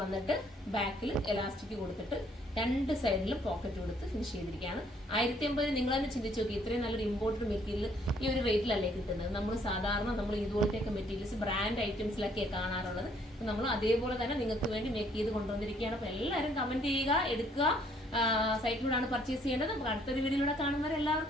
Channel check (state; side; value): normal; both; correlation 0.65